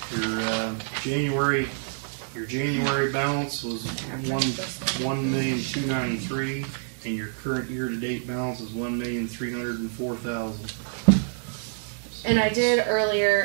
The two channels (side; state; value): left; silent; digital silence